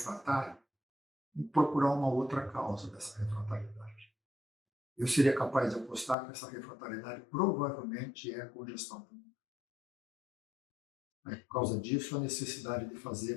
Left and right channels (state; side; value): drops out; right; at 6.2 s